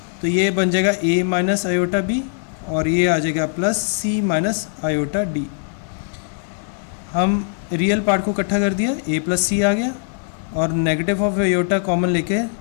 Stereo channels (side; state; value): right; silent; digital silence